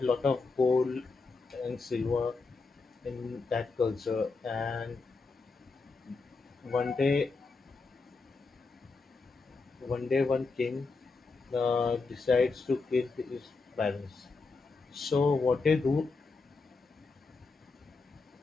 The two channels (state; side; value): quieter; right; 4.1 dB